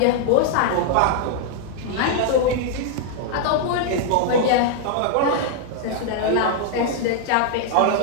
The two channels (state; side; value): different; both; correlation -0.01